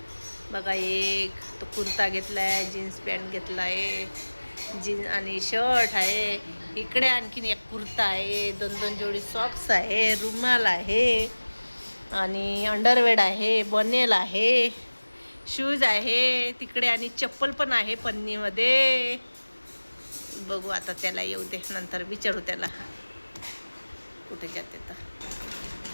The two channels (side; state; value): both; inverted; correlation -1.00